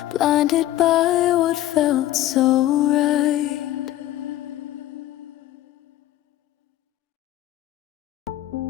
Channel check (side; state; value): right; quieter; 14.1 dB